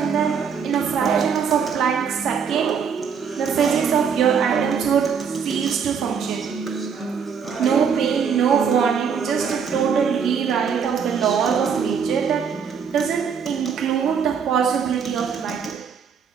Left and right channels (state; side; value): quieter; left; 6.7 dB